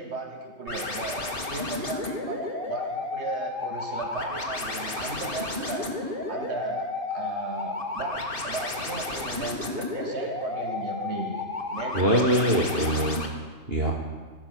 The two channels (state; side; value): late; left; 2.5 ms